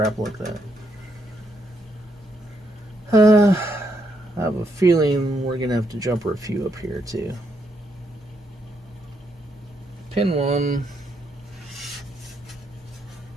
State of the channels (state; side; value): normal; both; correlation 0.77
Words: like that. I have a feeling we're going to have to jumper a few up here too. Pin 1.